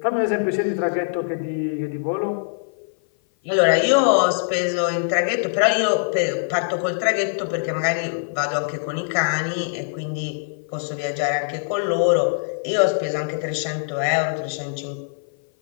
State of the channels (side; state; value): right; silent; 56 dB below the other